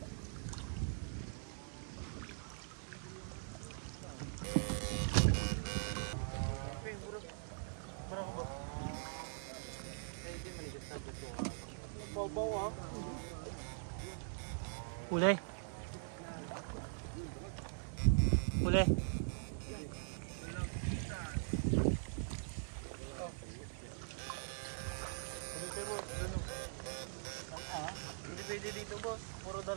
Uli. Hindi pwede dito, boss. Puro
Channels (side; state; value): left; silent; digital silence